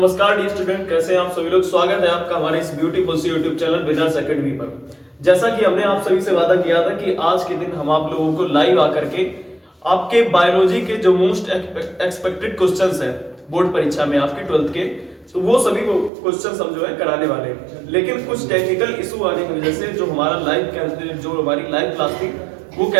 dear student, कैसे हैं आप सभी लोग। स्वागत है आपका हमारे इस ब्यूटीफुल सी यूट्यूब चैनल विनर्स एकेडमी पर। जैसा कि हमने आप सभी से वादा किया था कि आज के दिन हम आप लोगों को लाइव आकर के आपके बायोलॉजी के जो मोस्ट एक्सपेक्टेड क्वेश्चंस हैं बोर्ड परीक्षा में आपके 12th के, तो वो सभी क्वेश्चंस हम जो है कराने वाले हैं। लेकिन कुछ टेक्निकल इशू आने की वजह से जो हमारी लाइव क्लास थी वो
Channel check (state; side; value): drops out; left; at 16.1 s